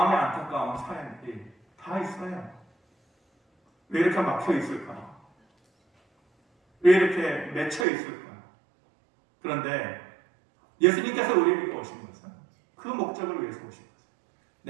안타까운 사연들이 다 있어요. 왜 이렇게 막혀 있을까? 왜 이렇게 맺혀 있을까? 그런데 예수님께서 우리에게 오신 것은 그 목적을 위해서 오신 것은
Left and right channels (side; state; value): left; drops out; at 7.9 s